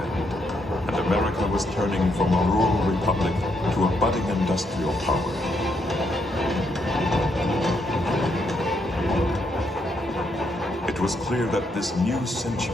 and America was turning from a rural republic to a budding industrial power. It was clear that this new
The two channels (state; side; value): normal; both; correlation 0.76